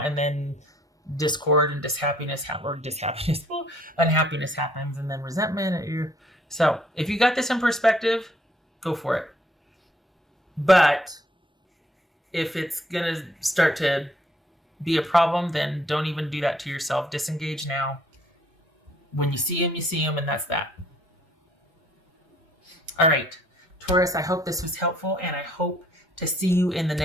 then discord and unhappiness happens, and then resentment. So if you got this in perspective, go for it. But if it's going to start to be a problem, then don't even do that to yourself. Disengage now. When you see him, and that's that. All right, Taurus, I hope this was helpful, and I hope to see you in the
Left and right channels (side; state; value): both; normal; correlation 0.64